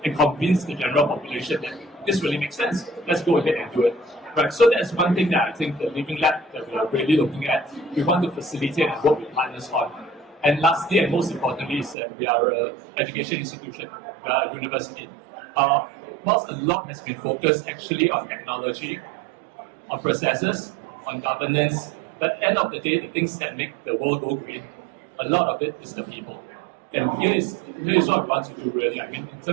and convince the general population that this really makes sense. Let's go ahead and do it. Right. So that's one thing that I think the living lab that we are really looking at, we want to facilitate and work with partners on. And lastly, and most importantly, is that we are an education institution, we are a university. Whilst a lot has been focused actually on technology, on processes, on governance, but at the end of the day, the things that make the world go green, a lot of it is the people. And here is what we want to do really. I mean, in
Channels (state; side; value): drops out; left; at 12.0 s